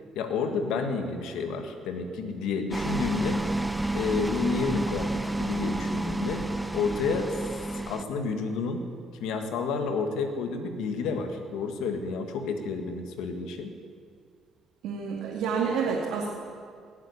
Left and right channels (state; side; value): normal; both; correlation 0.64